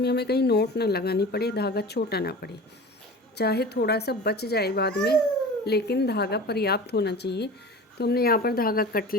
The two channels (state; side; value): normal; both; correlation 0.36